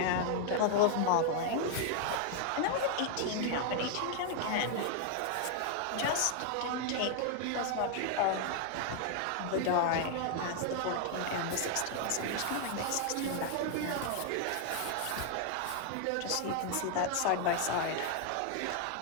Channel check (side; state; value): both; different; correlation 0.00